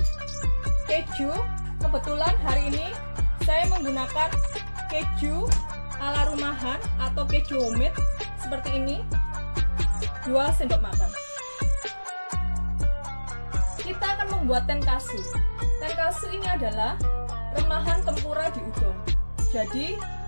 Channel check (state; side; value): inverted; both; correlation -1.00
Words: keju, kebetulan hari ini saya menggunakan keju ala rumahan atau keju homemade seperti ini, 2 sendok makan. Kita akan membuat tenkatsu. Tenkatsu ini adalah remahan tempura di udon. Jadi